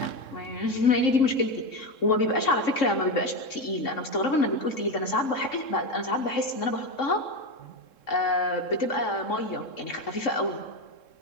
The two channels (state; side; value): late; right; 3.7 ms